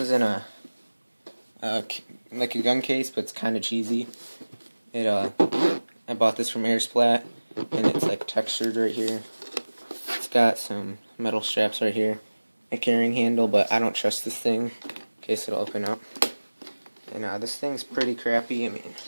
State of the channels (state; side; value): inverted; both; correlation -1.00